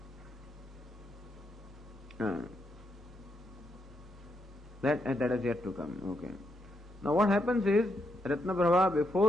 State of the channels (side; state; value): both; normal; correlation 0.80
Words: that is yet to come. Okay. Now what happens is, Ratnaprabha,